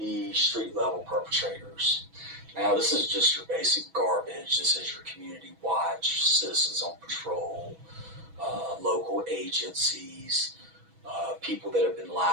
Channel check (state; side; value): late; left; 6.1 ms